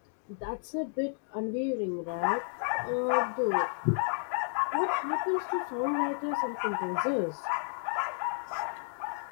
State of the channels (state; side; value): silent; right; digital silence